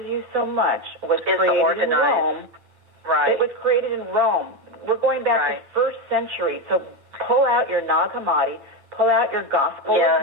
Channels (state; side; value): late; left; 8.8 ms